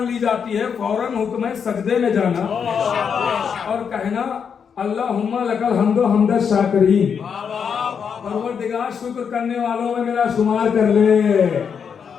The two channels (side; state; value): right; quieter; 6.9 dB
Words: ली जाती है फौरन हुक्म है सजदे में जाना और कहना अल्लाहुम्मा लकल हम्दो हम्द शाकिरीन, परवरदिगार शुक्र करने वालों में मेरा शुमार कर ले।